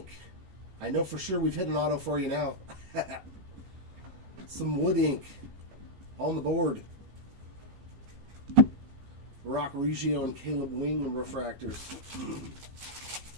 I know for sure we've hit an auto for you now. Some wood ink on the board. Rock Reggio and Caleb Wing refractors.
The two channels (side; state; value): left; late; 15 ms